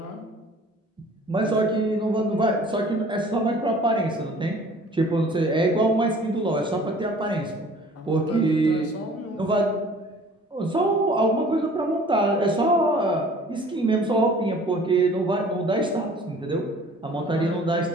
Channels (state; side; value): normal; both; correlation 0.50